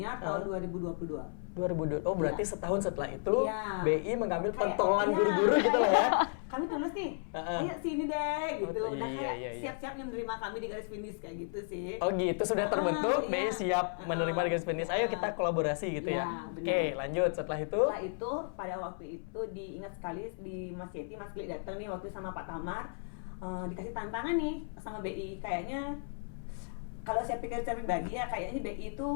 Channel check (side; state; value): right; silent; 55 dB below the other